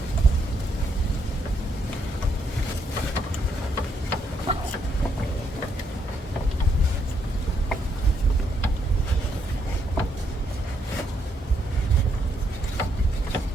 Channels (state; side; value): normal; both; correlation 0.75